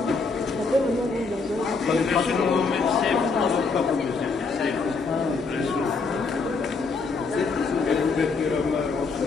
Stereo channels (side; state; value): right; quieter; 4.4 dB